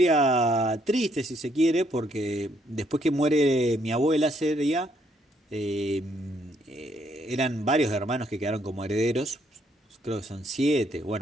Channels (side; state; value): both; normal; correlation 0.71